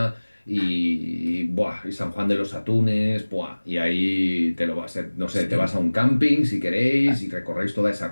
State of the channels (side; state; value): both; inverted; correlation -1.00